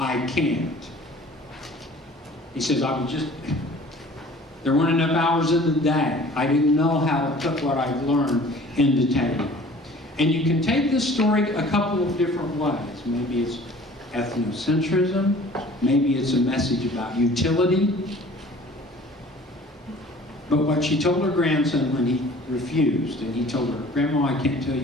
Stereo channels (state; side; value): normal; both; correlation 0.48